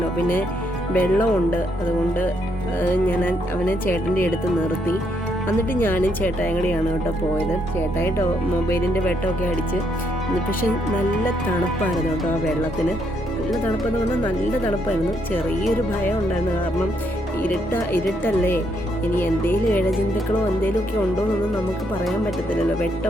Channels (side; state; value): both; normal; correlation 0.75